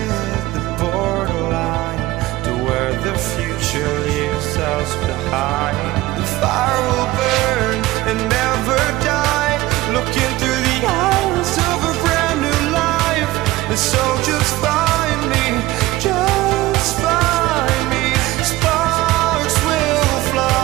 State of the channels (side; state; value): left; quieter; 17.9 dB